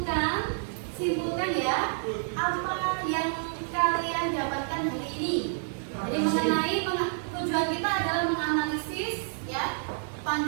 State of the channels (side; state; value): left; silent; 59 dB below the other